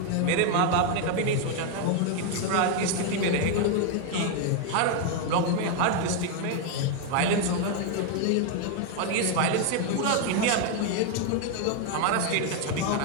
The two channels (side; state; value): both; different; correlation 0.01